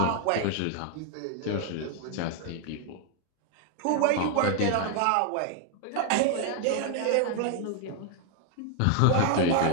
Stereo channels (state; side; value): different; both; correlation 0.00